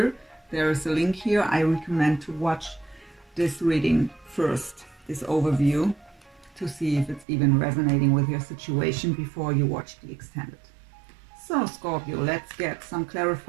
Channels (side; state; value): left; drops out; at 7.2 s